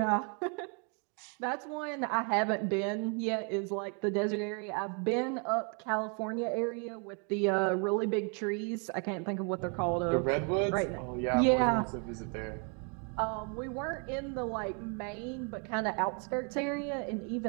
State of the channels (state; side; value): quieter; left; 37.9 dB